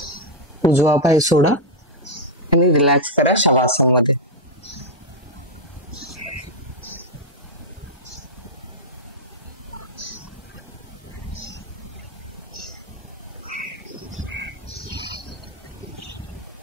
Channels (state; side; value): normal; both; correlation -0.01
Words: उजवा पाय सोडा आणि रिलॅक्स करा शवासन मध्ये.